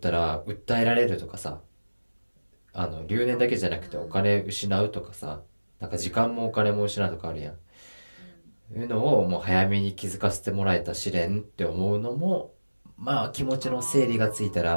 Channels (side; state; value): both; inverted; correlation -1.00